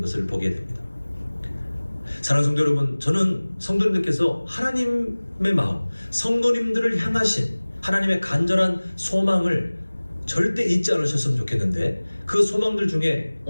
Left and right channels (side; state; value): both; inverted; correlation -1.00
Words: 것을 보게 됩니다. 사랑하는 성도 여러분, 저는 성도님들께서 하나님의 마음, 성도님들을 향하신 하나님의 간절한 소망을 절대 잊지 않으셨으면 좋겠는데, 그 소망들 중에